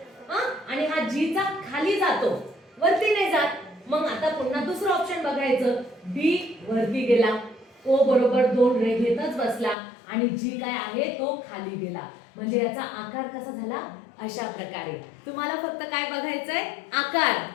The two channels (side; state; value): right; drops out; at 9.8 s